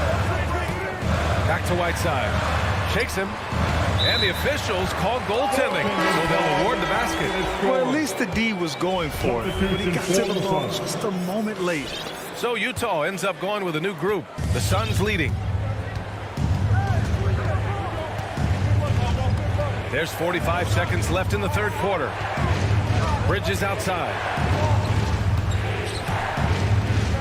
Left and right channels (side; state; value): both; identical; correlation 1.00